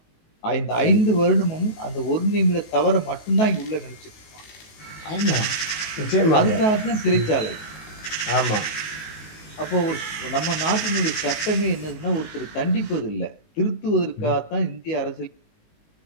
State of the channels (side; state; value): right; late; 19 ms